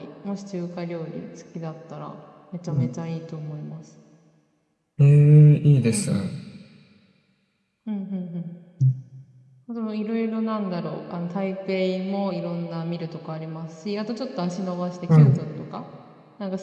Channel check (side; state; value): both; identical; correlation 1.00